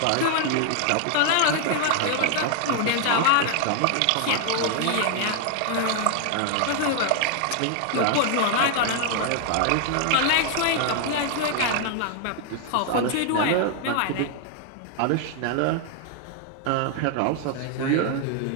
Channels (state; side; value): different; both; correlation 0.00